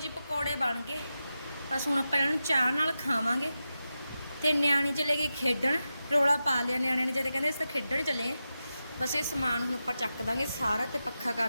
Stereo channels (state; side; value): inverted; both; correlation -0.91